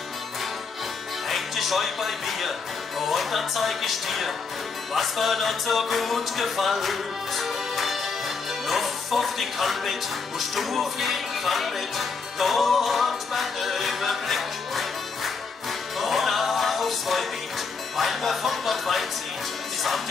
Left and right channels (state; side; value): quieter; right; 4.9 dB